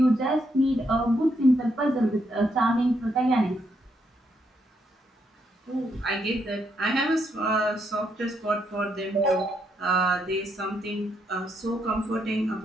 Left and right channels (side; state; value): both; normal; correlation 0.77